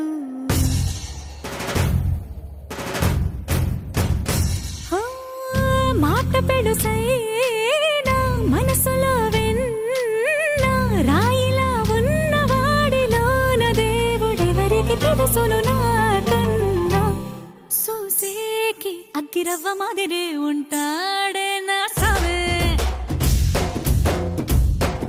మాట పెడుసైనా మనసులో వెన్న రాయిలా ఉన్నవాడిలోన దేవుడెవరికి తెలుసును నాకన్నా. సూసేకి అగ్గిరవ్వ మాదిరే ఉంటా.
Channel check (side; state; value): both; identical; correlation 1.00